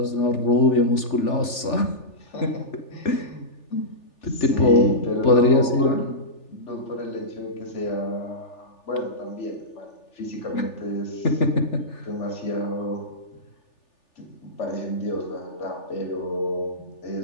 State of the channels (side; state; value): right; late; 3.4 ms